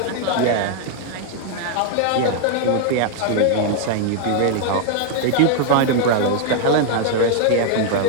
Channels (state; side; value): different; both; correlation 0.00